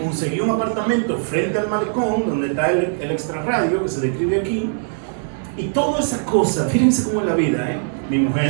un apartamento frente al malecón, donde está el extrarradio, que se describe aquí, y toda esa cosa, fíjense cómo es la vida, mi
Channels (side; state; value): left; silent; 65 dB below the other